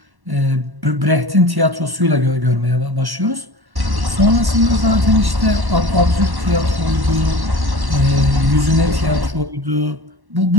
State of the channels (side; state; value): left; late; 1.1 ms